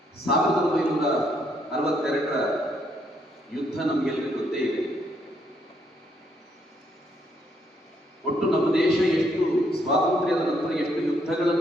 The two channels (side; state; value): both; normal; correlation 0.72